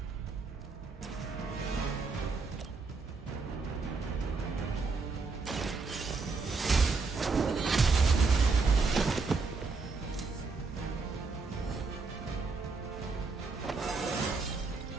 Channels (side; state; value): left; quieter; 4.3 dB